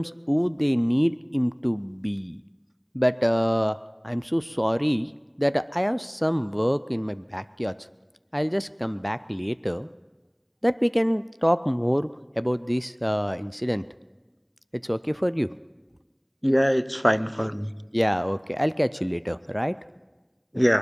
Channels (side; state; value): both; identical; correlation 1.00